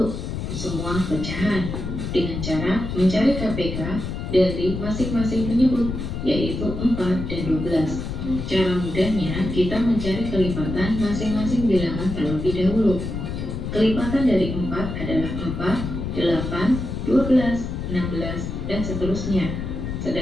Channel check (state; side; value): noise; left; rumble, 5 dB below the sound